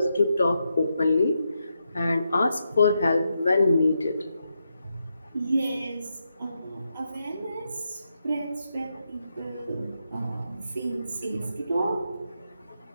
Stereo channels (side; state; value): both; inverted; correlation -0.84